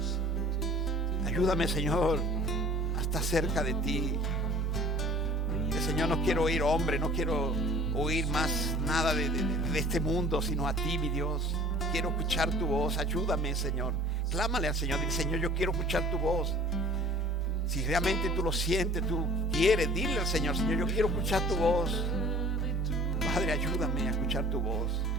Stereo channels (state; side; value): normal; both; correlation 0.48